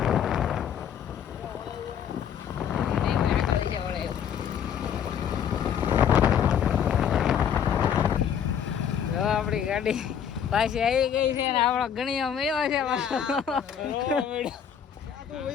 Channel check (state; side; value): quieter; right; 8.4 dB